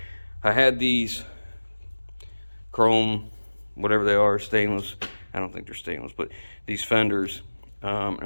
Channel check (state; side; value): inverted; both; correlation -1.00